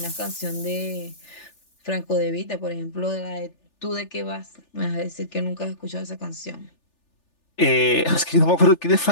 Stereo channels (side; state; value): right; late; 3.4 ms